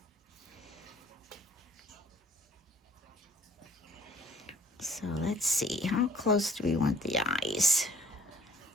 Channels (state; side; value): normal; both; correlation 0.56